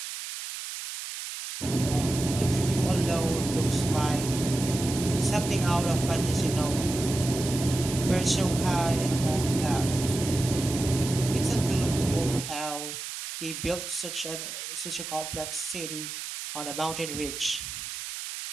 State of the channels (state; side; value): noise; right; hiss, 7 dB below the sound